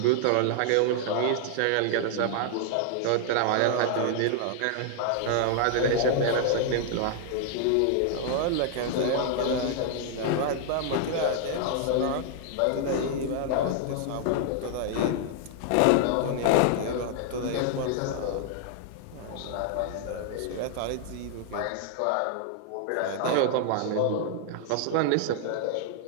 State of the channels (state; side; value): different; both; correlation 0.00